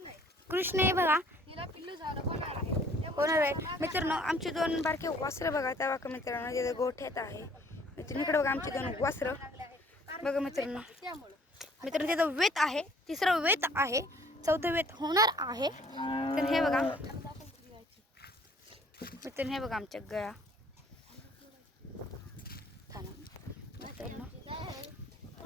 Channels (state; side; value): normal; both; correlation 0.57